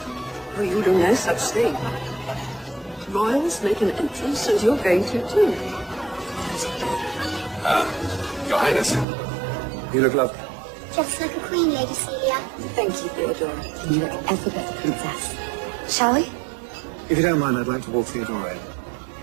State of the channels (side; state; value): left; drops out; at 9.1 s